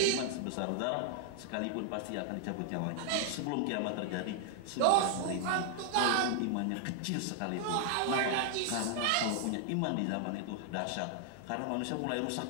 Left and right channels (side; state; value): both; different; correlation -0.01